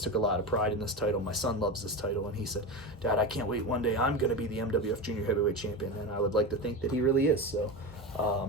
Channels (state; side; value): normal; both; correlation 0.22